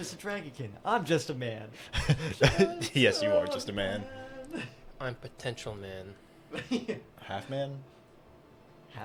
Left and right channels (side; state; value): both; identical; correlation 1.00